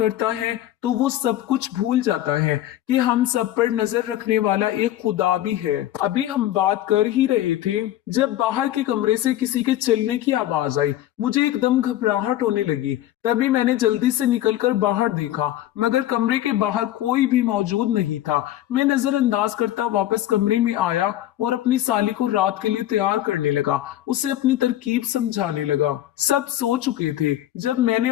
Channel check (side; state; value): right; quieter; 13.4 dB